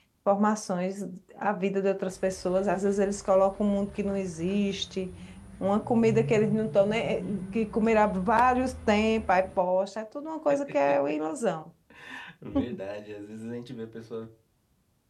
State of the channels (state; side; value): identical; both; correlation 1.00